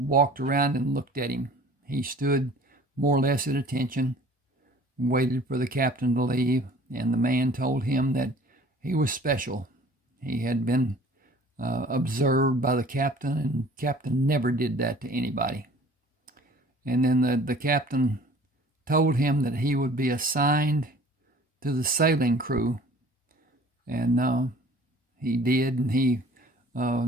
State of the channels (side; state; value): both; normal; correlation 0.50